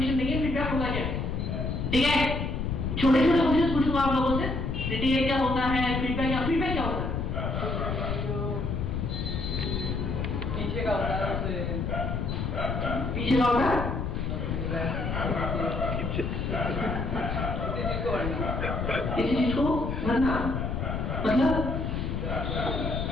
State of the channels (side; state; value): left; noise; rumble, 2 dB below the sound